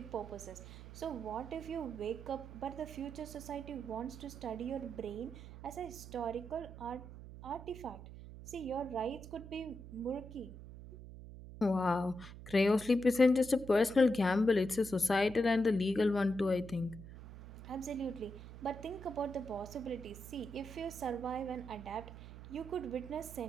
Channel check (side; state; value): right; noise; hum, 13 dB below the sound